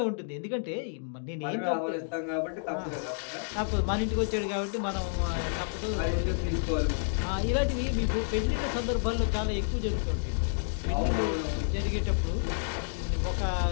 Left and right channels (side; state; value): right; silent; digital silence